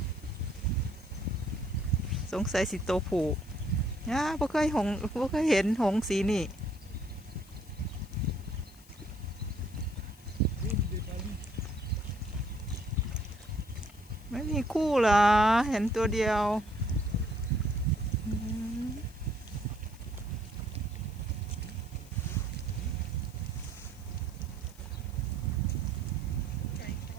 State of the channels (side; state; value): left; noise; hiss, 24 dB below the sound